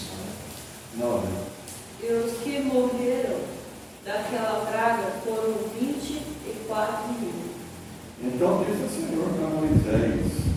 9. E os que morreram daquela praga foram 24.000. Então disse o Senhor a Moisés:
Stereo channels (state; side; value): identical; both; correlation 1.00